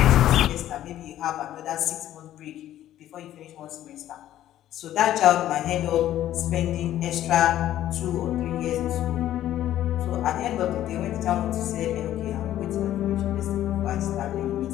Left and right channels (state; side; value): quieter; right; 12.6 dB